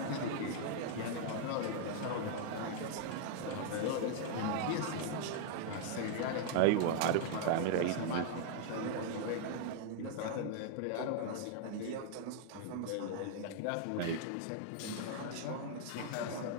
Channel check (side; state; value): both; different; correlation -0.01